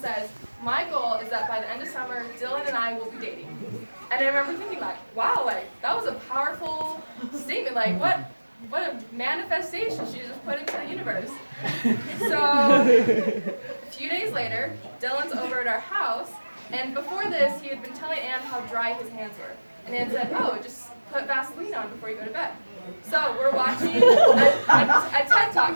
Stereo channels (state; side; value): inverted; both; correlation -1.00